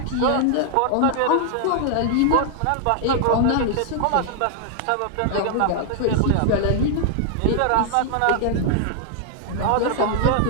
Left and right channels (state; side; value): different; both; correlation 0.00